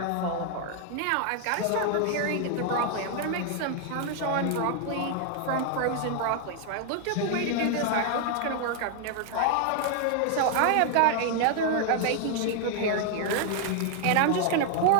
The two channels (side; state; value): both; different; correlation 0.00